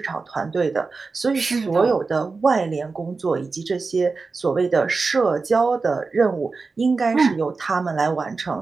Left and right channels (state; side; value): quieter; left; 4.2 dB